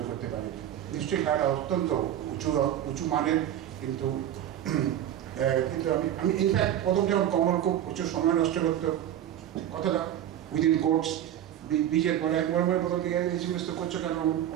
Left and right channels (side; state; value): left; quieter; 11.2 dB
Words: করতে পারিনি। নিশ্চয়ই খেলাটা অত্যন্ত উঁচু মানের, কিন্তু আমি ইনফ্যাক্ট প্রথম যখন কমল খুব প্রচুর সময় নষ্ট করতো, কথাটা উইদিন কোর্টস, ব্রিজের পরে একবার প্রথম দিকে এই জিনিস তো করছো কেন,